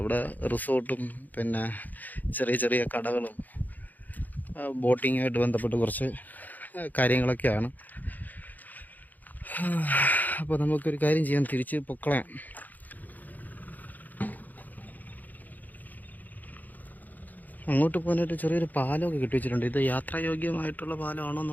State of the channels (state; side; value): late; right; 0.083 ms